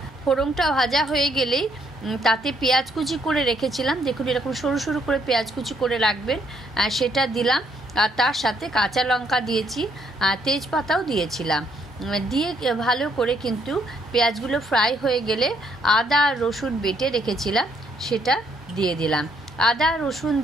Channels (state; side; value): normal; both; correlation 0.70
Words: ফোড়নটা ভাজা হয়ে গেলেই তাতে পেঁয়াজ কুচি করে রেখেছিলাম, দেখুন এরকম সরু সরু করে পেঁয়াজ কুচি করে রাখবেন, সেটা দিলাম। আর তার সাথে কাঁচা লঙ্কা দিয়েছি, তেজপাতাও দিয়েছিলাম। দিয়ে ভালো করে কিন্তু পেঁয়াজগুলো ফ্রাই হয়ে গেলে আদা আর রসুন বেটে রেখেছিলাম সেটা দিয়ে দিলাম। আদা রসুন